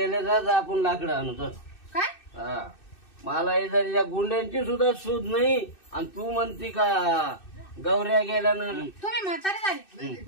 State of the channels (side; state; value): right; late; 2.6 ms